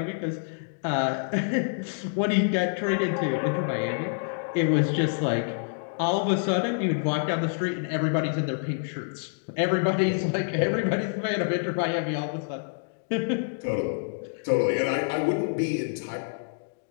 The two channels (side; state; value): right; silent; digital silence